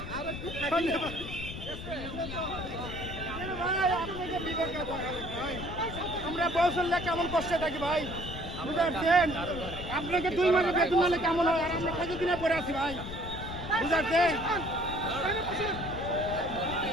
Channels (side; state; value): left; noise; rumble, 9 dB below the sound